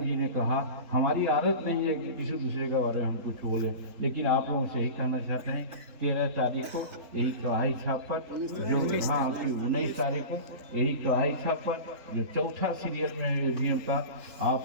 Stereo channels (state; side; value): late; left; 4.1 ms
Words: जी ने कहा, हमारी आदत नहीं है कि किसी दूसरे के बारे में हम कुछ बोलें, लेकिन आप लोगों से यही कहना चाहते हैं 13 तारीख को यही कढ़ाई छाप पर जो 19 तारीख को यही कढ़ाई छाप पर जो चौथा सीरियल में EVM का,